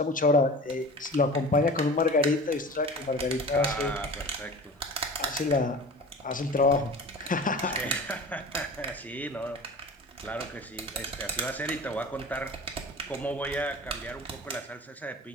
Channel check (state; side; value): normal; both; correlation 0.37